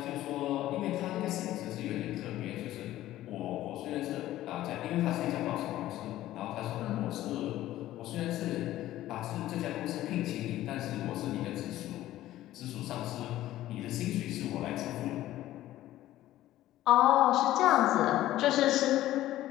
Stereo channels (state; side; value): quieter; right; 14.5 dB